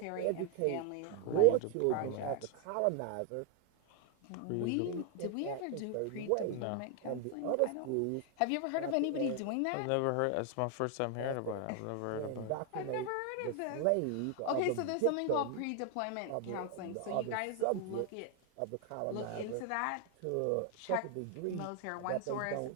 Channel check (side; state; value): both; different; correlation 0.00